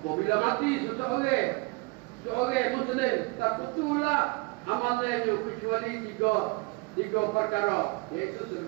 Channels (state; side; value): quieter; left; 27.5 dB